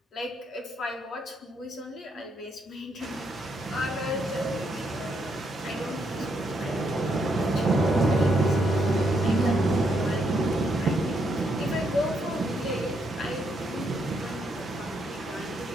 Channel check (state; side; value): normal; both; correlation 0.76